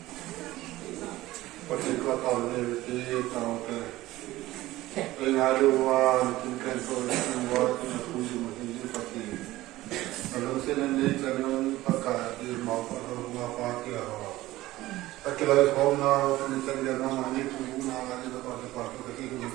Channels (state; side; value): quieter; left; 17.0 dB